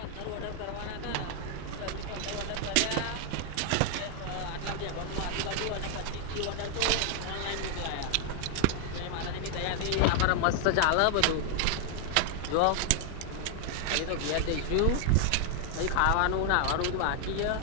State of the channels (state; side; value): different; both; correlation 0.00